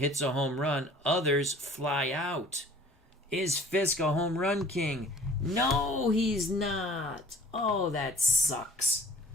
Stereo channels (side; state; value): both; normal; correlation 0.50